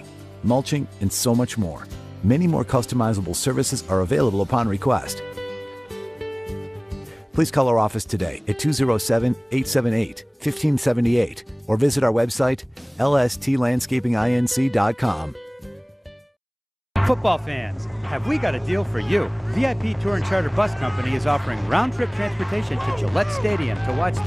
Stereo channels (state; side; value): identical; both; correlation 1.00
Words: mulching, and so much more. Many more customizable services are available upon request. Please call our office today at 207-878-1578 or visit our website, lstlandscapinginc.com. Football fans, have we got a deal for you? VIP Tour and Charter Bus Company is offering round-trip transportation to Gillette Stadium to watch